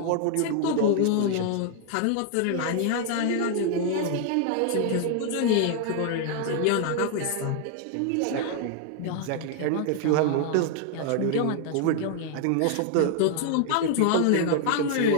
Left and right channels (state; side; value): different; both; correlation 0.00